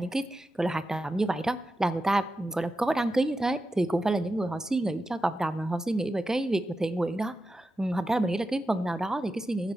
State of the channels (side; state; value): both; normal; correlation 0.91